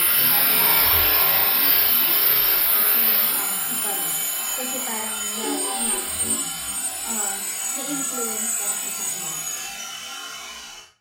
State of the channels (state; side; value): identical; both; correlation 1.00